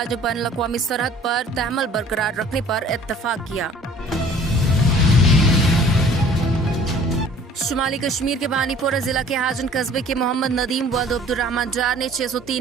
ने बैनुल अक़वामी सरहद पर तहमल बरकरार रखने पर इत्तफाक किया। शुमाली कश्मीर के बानीपोरा जिला के हाजन कस्बे के मोहम्मद नदीम वल्द अब्दुर्रहमान डार ने 603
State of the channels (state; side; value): normal; both; correlation 0.51